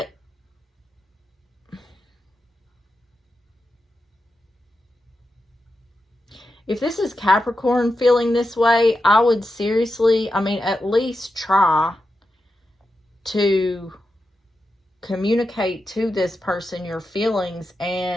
if this is Capricorn feeling this way, I would seriously, at least try to communicate to this person your feelings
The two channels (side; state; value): both; normal; correlation 0.89